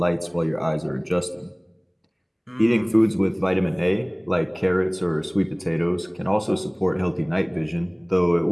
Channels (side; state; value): both; identical; correlation 1.00